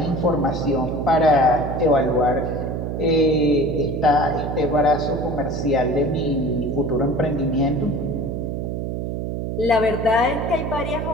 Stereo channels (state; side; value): noise; right; hum, 3 dB below the sound